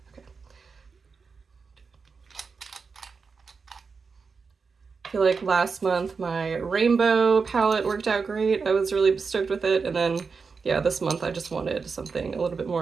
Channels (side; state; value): left; quieter; 5.0 dB